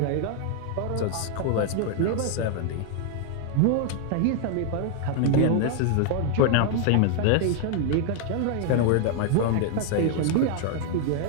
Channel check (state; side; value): different; both; correlation 0.00